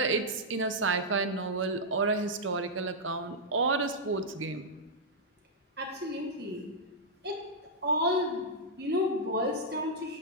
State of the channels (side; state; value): both; normal; correlation -0.07